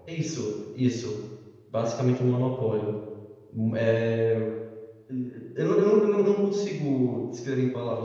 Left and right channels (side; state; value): both; identical; correlation 1.00